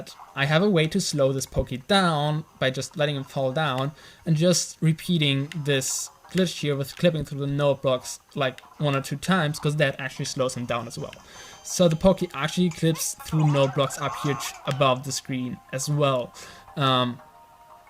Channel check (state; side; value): identical; both; correlation 1.00